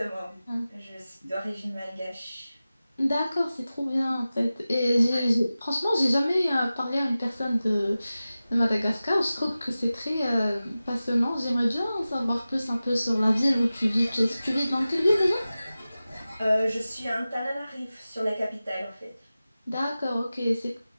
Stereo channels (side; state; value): both; inverted; correlation -0.95